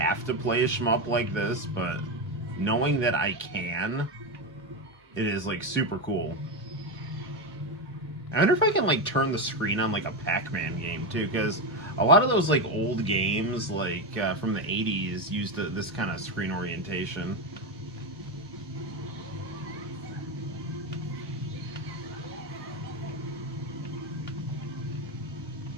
to play a shmup like this, but knowing that I can, it is, like, super cool. I wonder if I can, like, turn the screen on, like, a Pac-Man game, too, because a lot of those, like, old games, like, from the 80s used this kind of screen orientation.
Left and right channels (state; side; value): normal; both; correlation 0.12